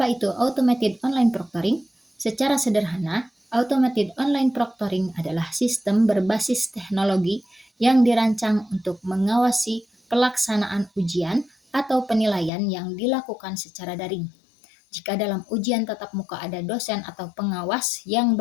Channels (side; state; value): right; drops out; at 12.5 s